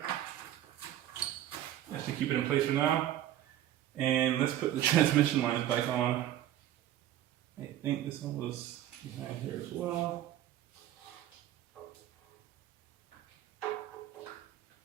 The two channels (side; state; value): left; quieter; 12.5 dB